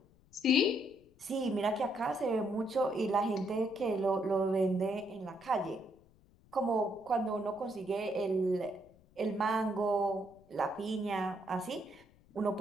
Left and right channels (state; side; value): noise; left; rumble, 29 dB below the sound